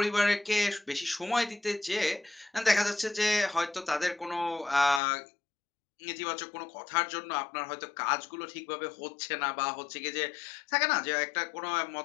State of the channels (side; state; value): right; drops out; at 5.0 s